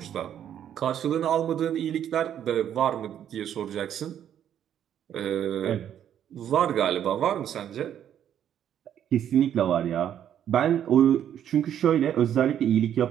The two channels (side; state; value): left; quieter; 10.0 dB